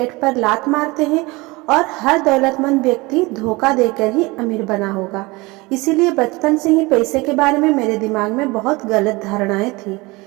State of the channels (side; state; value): left; quieter; 23.5 dB